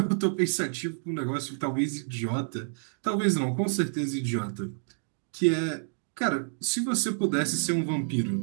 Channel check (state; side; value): silent; left; digital silence